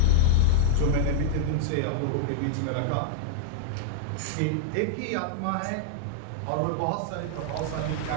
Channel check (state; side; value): different; both; correlation -0.01